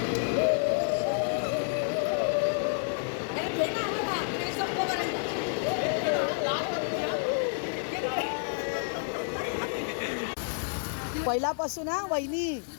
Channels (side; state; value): right; silent; 58 dB below the other